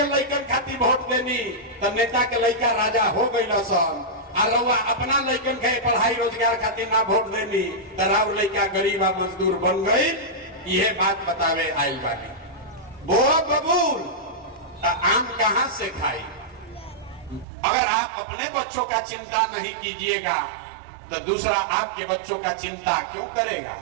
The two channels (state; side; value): drops out; left; at 17.4 s